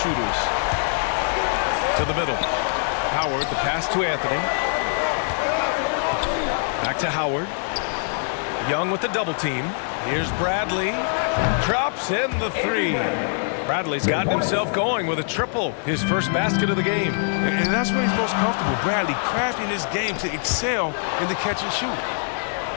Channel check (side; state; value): right; silent; digital silence